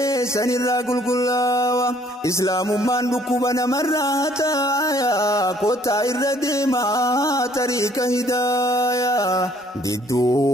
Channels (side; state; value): both; normal; correlation 0.62